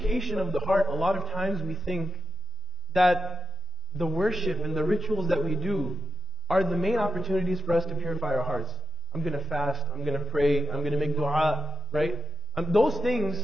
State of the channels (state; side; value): normal; both; correlation 0.97